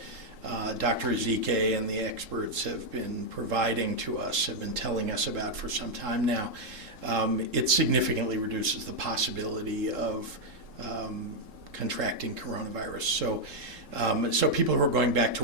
Dr. Ezike and the experts have been providing to us, have been telling us about for some time now, it significantly reduces the possibility of contracting coronavirus. So people who are going back to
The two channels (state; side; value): late; left; 3.7 ms